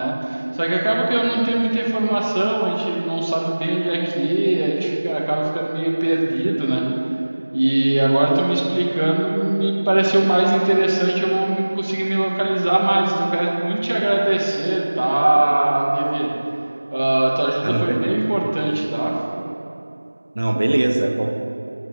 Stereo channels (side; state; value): both; inverted; correlation -1.00